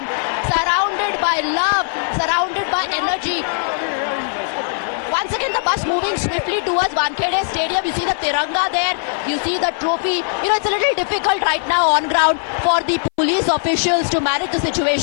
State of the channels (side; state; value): right; silent; 59 dB below the other